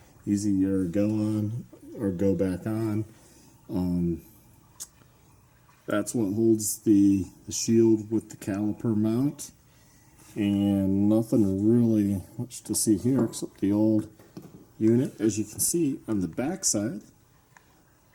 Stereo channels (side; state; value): both; identical; correlation 1.00